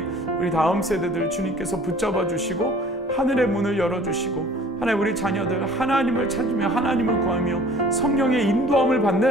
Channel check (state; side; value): normal; both; correlation 0.50